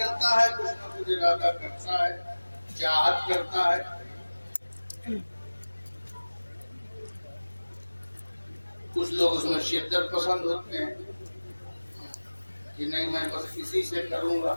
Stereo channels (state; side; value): inverted; both; correlation -1.00